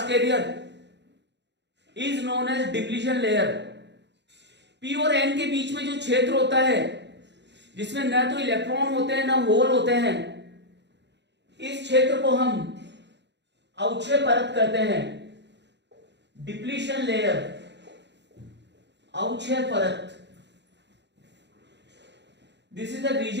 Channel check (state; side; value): late; left; 0.51 ms